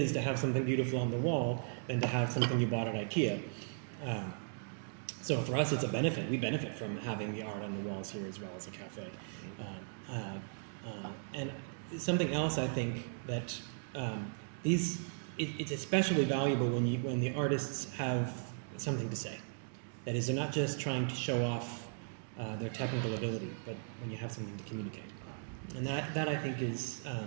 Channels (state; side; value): silent; left; digital silence